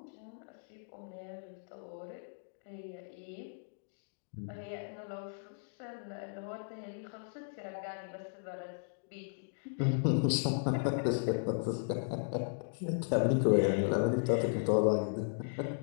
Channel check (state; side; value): silent; right; digital silence